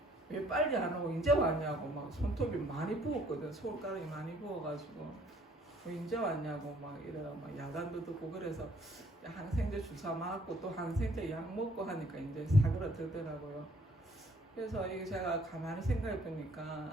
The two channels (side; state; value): both; normal; correlation 0.62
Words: 왜 빨리 안 오고 이제 왔냐고 막 손톱이 많이 부었거든. 손가락이 많이 부어가지고 왜 이제 왔냐고 막 이래가 막 야단도 듣고 그래서 항생제 주사 맞고 또 항생제 약 먹고 하니까 이제 사그라들더라고요. 그래서 이게 제가 가만히 생각해